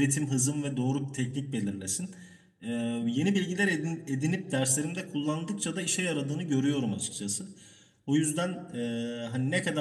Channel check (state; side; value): identical; both; correlation 1.00